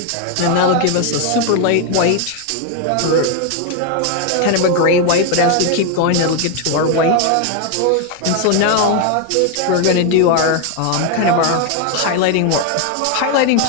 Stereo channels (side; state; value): both; different; correlation 0.01